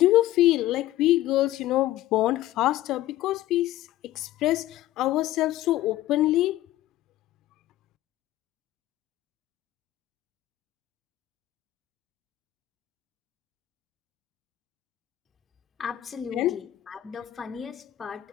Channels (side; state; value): right; quieter; 14.7 dB